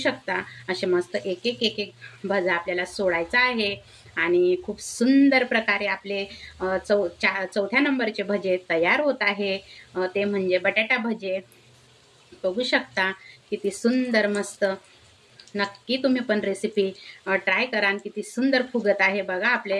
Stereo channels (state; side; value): identical; both; correlation 1.00